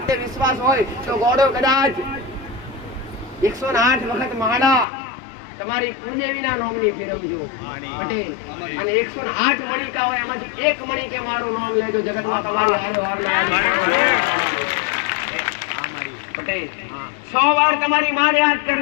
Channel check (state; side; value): drops out; right; at 4.9 s